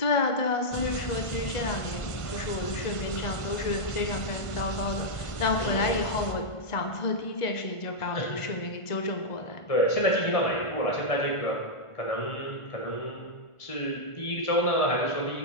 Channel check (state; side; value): late; right; 1.5 ms